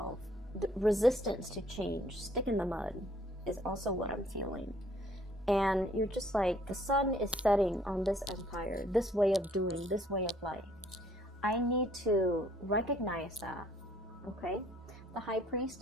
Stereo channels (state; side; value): normal; both; correlation 0.62